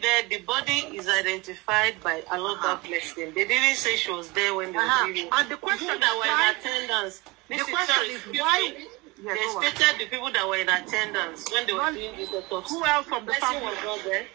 there. The body is identified by Aloba Blessing. They didn't say she was there when they were doing it. And the question that were in attendance. The question is why? Yeah, they stated the people that were in attendance when they were doing this autopsy. Who else from the family was not there?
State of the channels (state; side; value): quieter; left; 23.8 dB